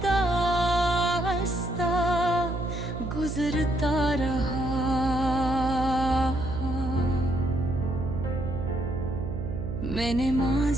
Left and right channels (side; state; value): right; noise; hum, 5 dB below the sound